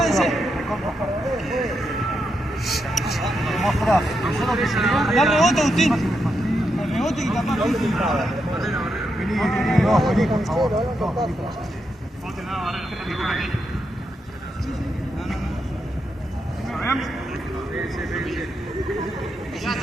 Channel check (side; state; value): both; normal; correlation 0.83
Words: Al rebote, Agustín. Al rebote y capaz.